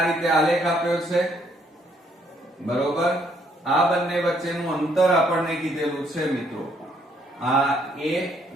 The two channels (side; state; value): both; normal; correlation 0.69